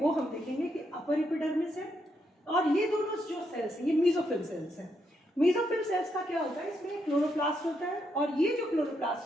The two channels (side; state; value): both; normal; correlation 0.79